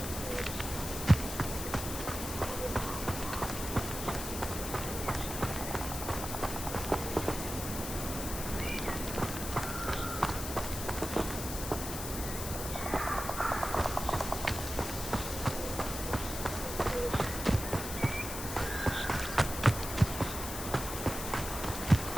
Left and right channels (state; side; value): noise; left; hiss, 6 dB below the sound